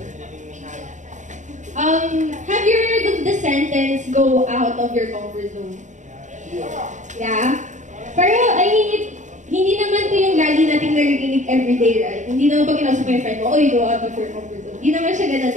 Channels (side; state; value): left; late; 0.35 ms